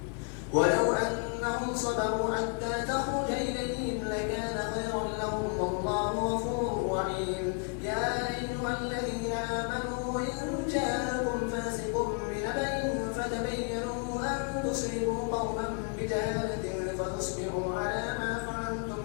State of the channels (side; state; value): right; quieter; 39.2 dB